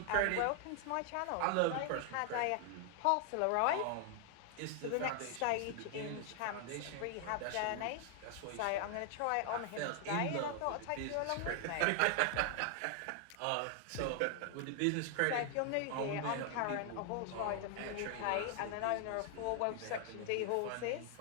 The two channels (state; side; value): different; both; correlation 0.00